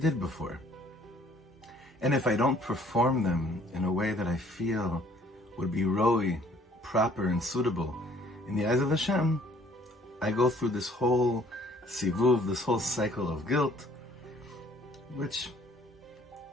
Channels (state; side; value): normal; both; correlation 0.58